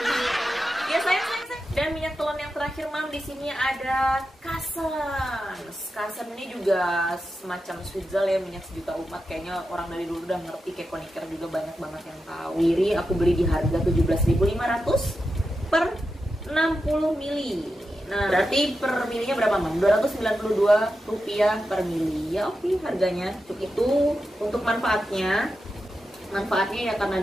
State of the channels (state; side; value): normal; both; correlation 0.89